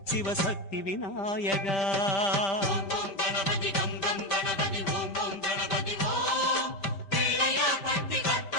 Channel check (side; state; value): right; late; 5.1 ms